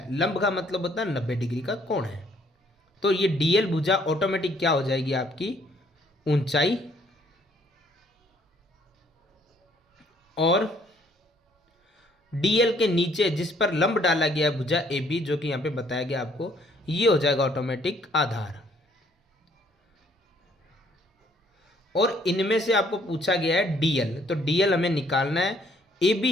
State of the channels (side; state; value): both; normal; correlation 0.64